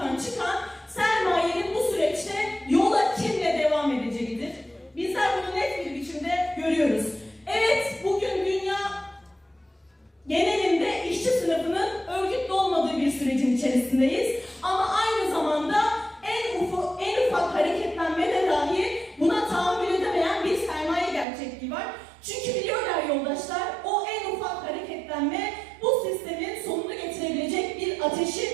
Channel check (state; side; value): drops out; left; at 21.2 s